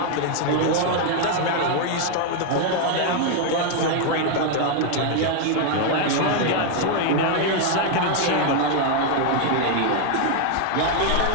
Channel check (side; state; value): both; different; correlation 0.00